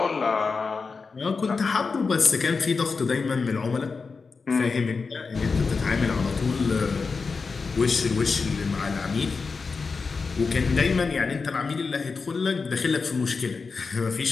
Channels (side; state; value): right; quieter; 4.7 dB